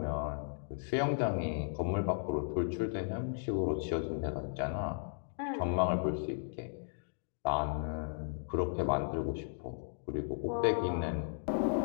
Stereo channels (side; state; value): right; silent; digital silence